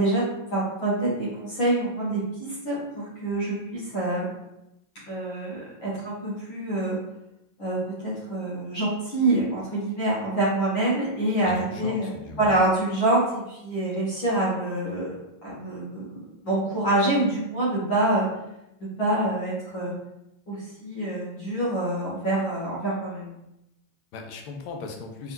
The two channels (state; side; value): late; right; 8.5 ms